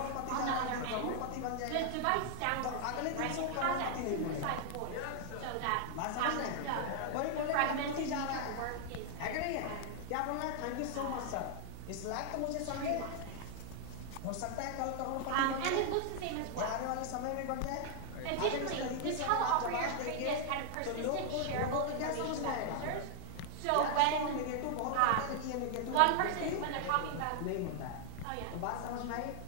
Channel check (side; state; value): both; different; correlation 0.00